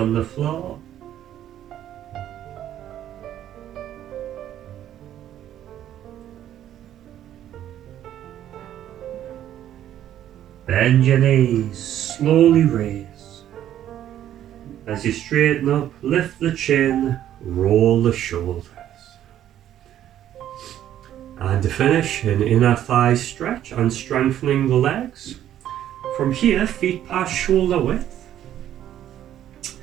the floor. Bend your knees, slowly raise. As you straighten up, lift the chin, roll the shoulders. And to finish, an inner thigh stretch and strengthening the legs. From here, feet past shoulder width.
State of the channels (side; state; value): left; quieter; 11.4 dB